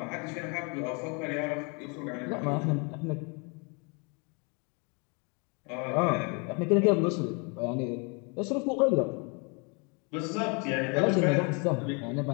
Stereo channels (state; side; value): quieter; right; 33.6 dB